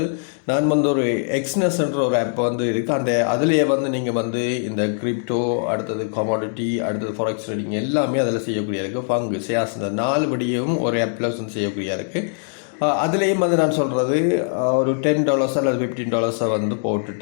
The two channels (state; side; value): silent; right; digital silence